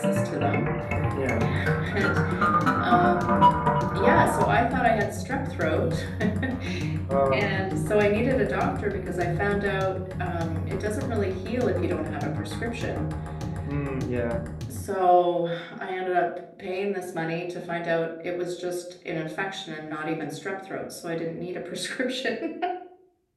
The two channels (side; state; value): both; identical; correlation 1.00